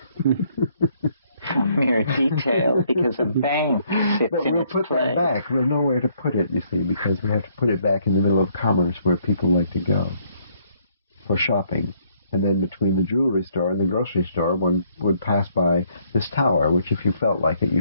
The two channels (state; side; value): inverted; both; correlation -0.67